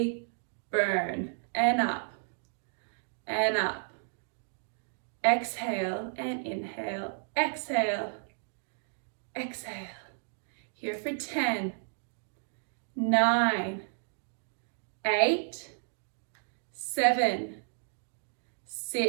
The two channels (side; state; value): left; silent; digital silence